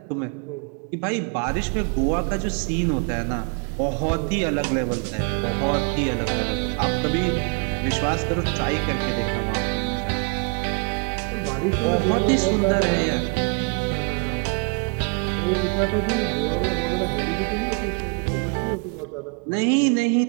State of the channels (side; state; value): left; quieter; 35.8 dB